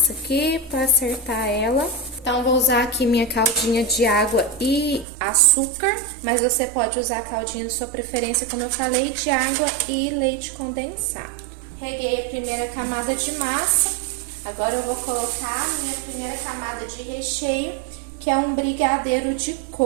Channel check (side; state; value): left; drops out; at 5.1 s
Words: aqui pra acertar ela. Então, vou usar aqui minha caldinha de água e açúcar, mas você pode usar a caldinha da sua preferência, como eu falei, de água e leite condensado. Reguei a primeira camada de massa. Agora eu vou colocar a minha primeira camada de recheio, que é um brigadeiro de